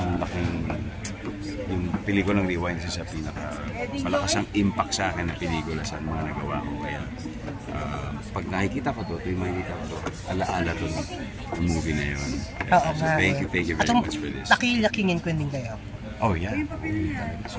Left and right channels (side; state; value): both; identical; correlation 1.00